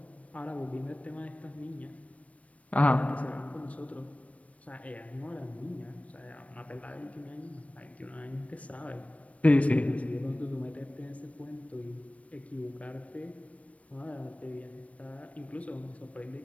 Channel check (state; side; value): late; right; 0.065 ms